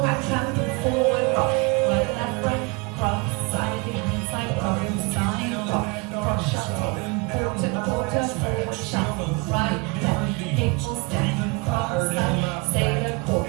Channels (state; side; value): quieter; left; 28.5 dB